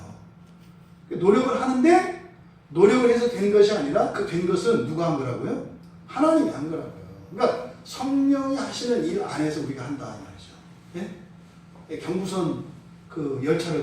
노력을 하는데 노력을 해서 된 것이 아니라 그 된 것은 누가 한 거라고요? 하나님이 한 거라고요. 그러니까 성령이 하시는 일 안에서 우리가 한다 이 말이죠. 예? 경부선 그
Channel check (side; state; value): both; identical; correlation 1.00